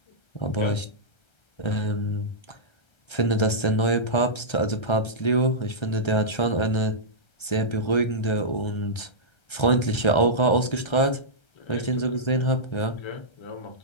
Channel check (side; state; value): right; late; 1.3 ms